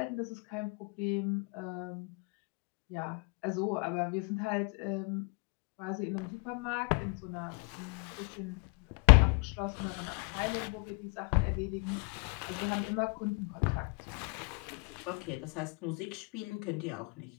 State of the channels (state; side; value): quieter; right; 33.5 dB